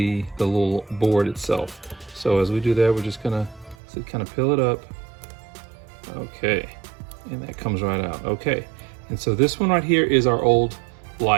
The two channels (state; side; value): drops out; left; at 3.8 s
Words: the little board itself. So as we do that, we're just going to kind of peel it up Okay, and that comes right out. Okay, and so this one right here is our old